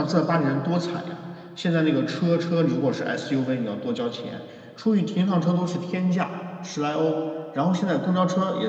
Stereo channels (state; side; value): identical; both; correlation 1.00